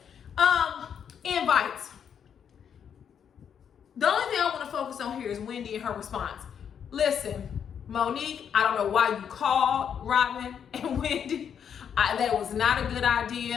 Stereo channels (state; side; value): quieter; right; 8.0 dB